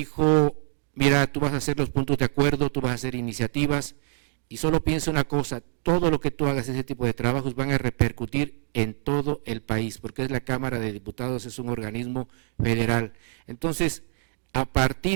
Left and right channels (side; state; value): left; silent; 61 dB below the other